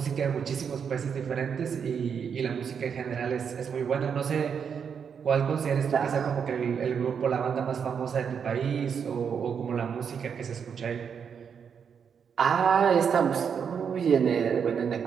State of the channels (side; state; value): left; quieter; 7.0 dB